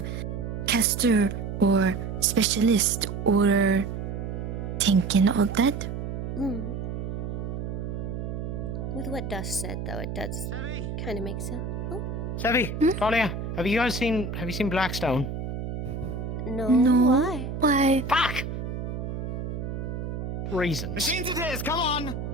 caster or specialist or tank and all that. With what Dust said, though, it does kind of make sense. Oh, Sevi, Talia, have you seen Blackstone? no. No. Why? Fuck! Reasons. Machines it is, come on!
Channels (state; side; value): noise; right; hum, 5 dB below the sound